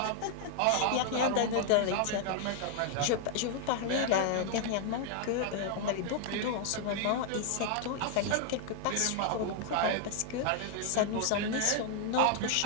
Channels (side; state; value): both; different; correlation 0.00